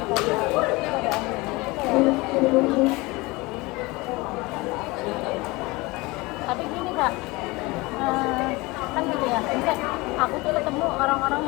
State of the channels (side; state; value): right; quieter; 23.1 dB